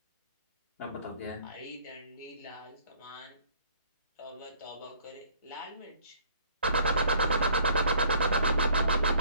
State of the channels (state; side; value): inverted; both; correlation -0.58